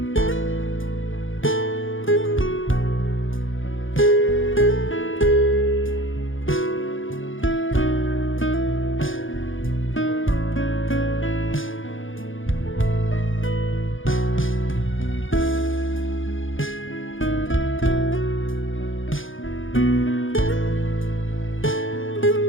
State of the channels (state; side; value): late; right; 0.58 ms